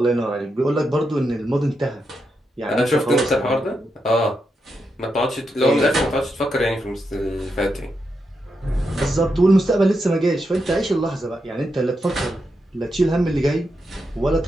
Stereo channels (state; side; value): normal; both; correlation 0.85